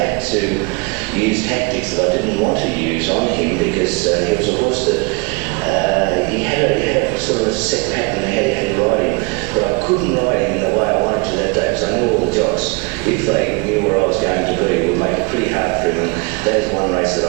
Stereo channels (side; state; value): left; quieter; 29.5 dB